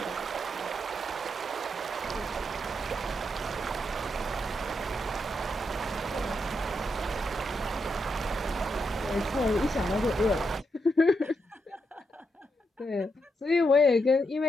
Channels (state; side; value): normal; both; correlation 0.82